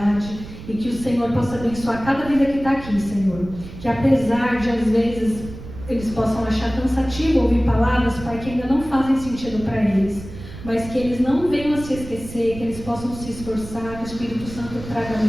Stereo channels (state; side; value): noise; right; rumble, 13 dB below the sound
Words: e que o Senhor possa abençoar cada vida que está aqui, Senhor. Que apesar de, às vezes, eles possam achar cansativo ouvir palavras, Pai, que ainda não fazem sentido para eles, mas que eles não venham a se esquecer, que eles possam se esforçar, que o Espírito Santo traga